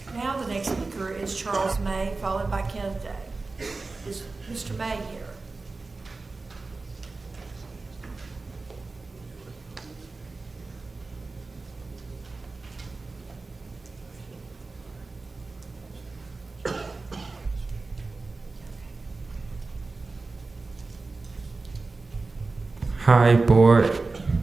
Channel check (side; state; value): left; quieter; 3.7 dB